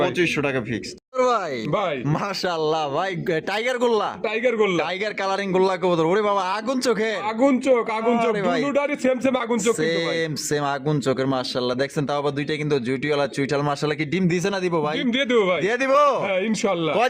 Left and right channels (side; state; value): both; identical; correlation 1.00